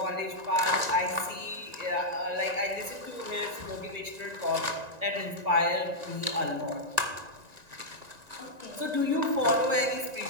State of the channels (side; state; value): left; late; 1.9 ms